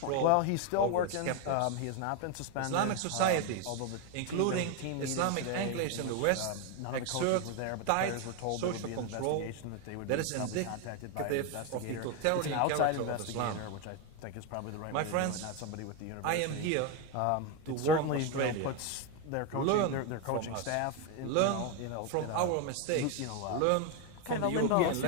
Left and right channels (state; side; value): different; both; correlation 0.02